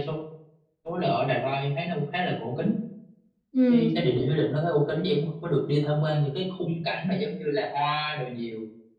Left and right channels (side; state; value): both; identical; correlation 1.00